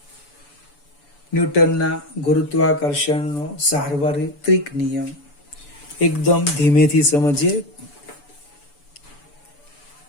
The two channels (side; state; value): right; late; 6.9 ms